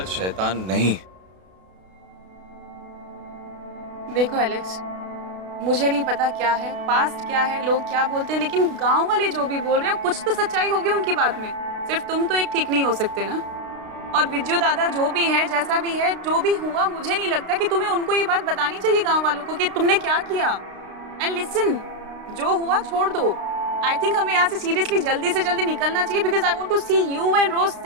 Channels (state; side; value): late; left; 32 ms